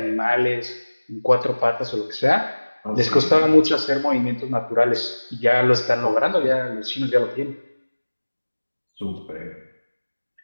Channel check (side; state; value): both; inverted; correlation -1.00